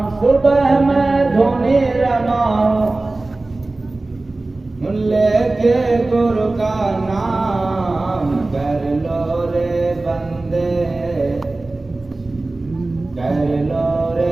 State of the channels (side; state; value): left; quieter; 3.1 dB